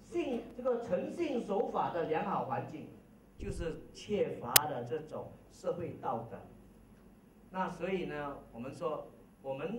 这个诚信守法的良好环境，就是缺乏了这种社会道德。那所以呢，我们说，我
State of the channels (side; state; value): both; identical; correlation 1.00